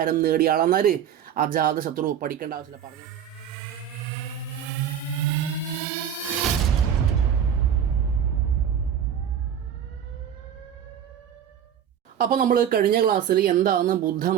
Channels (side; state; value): left; quieter; 9.1 dB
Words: നേടിയ ആളെന്നാല് അജാതശത്രു. പഠിക്കേണ്ട ആവശ്യമില്ല, പറഞ്ഞു. അപ്പോൾ നമ്മൾ കഴിഞ്ഞ ക്ലാസ്സിൽ എന്താണ്